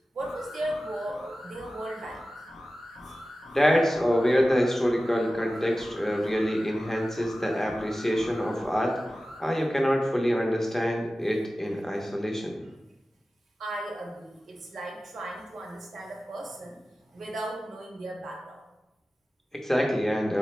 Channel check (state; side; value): normal; both; correlation 0.95